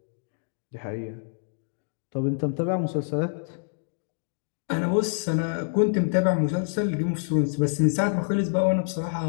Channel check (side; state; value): right; silent; digital silence